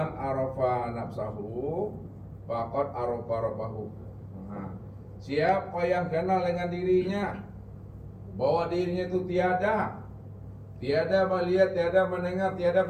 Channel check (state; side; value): identical; both; correlation 1.00